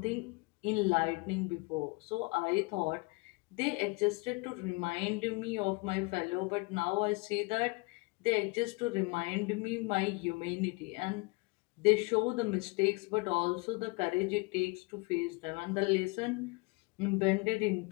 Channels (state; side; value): quieter; right; 26.6 dB